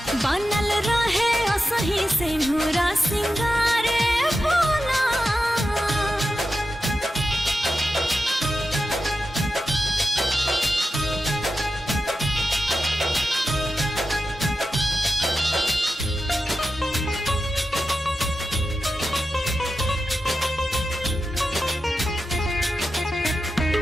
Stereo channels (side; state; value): both; normal; correlation 0.91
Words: बनल रहे सही से नूरा सिंगार भोला।